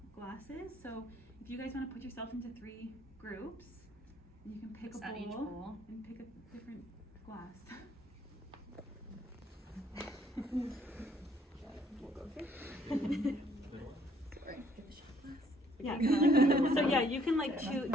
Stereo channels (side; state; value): both; normal; correlation 0.63